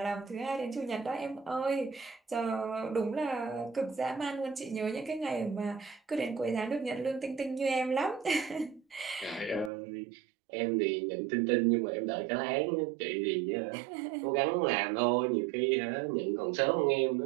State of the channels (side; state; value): left; drops out; at 9.7 s